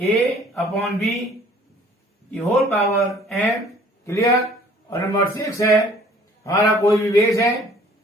ए अपॉन बी की होल पावर एम। क्लियर। और नंबर 6 है हमारा कोई भी बेस है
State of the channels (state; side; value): normal; both; correlation 0.54